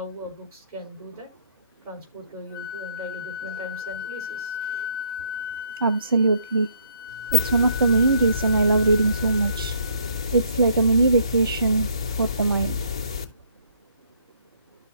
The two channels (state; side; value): inverted; both; correlation -0.64